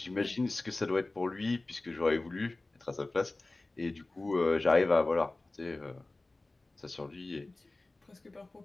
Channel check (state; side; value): quieter; right; 3.0 dB